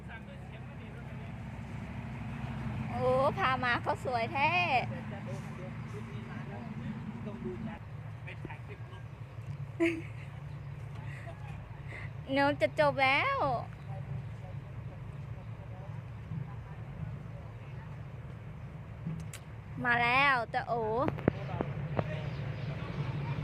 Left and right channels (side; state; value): both; identical; correlation 1.00